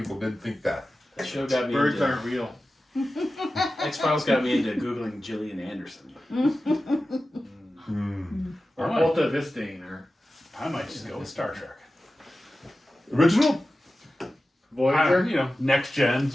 did think that. That show got me Birds into aren't real. X-Files got me into Googling Gillian Anderson. Or Right. Alta Vistine, or I might just go with Star Trek. Original? Voyager. Next gen,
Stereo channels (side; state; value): both; normal; correlation 0.94